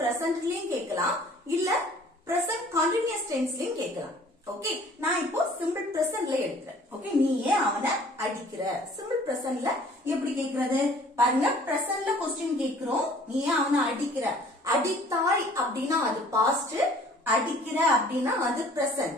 பிரசன்ட்லயும் கேட்கலாம், இல்ல பிரசன்ட் கண்டினியூஸ் டென்ஸ்லயும் கேட்கலாம். ஓகே, நான் இப்போ சிம்பிள் பிரசன்ட்ல எடுக்கிறேன். ஓகே, நீ ஏன் அவனை அடிக்கிற, சிம்பிள் பிரசன்ட்ல எப்படி கேட்கறது பாருங்க. பிரசன்ட்ல क्वेश्चन கேட்கிறோம், நீ ஏன் அவனை அடிக்கிற. அடித்தாய் அப்படின்னா அது பாஸ்ட், அடிக்கிற அப்படின்னா அது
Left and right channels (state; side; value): normal; both; correlation 0.53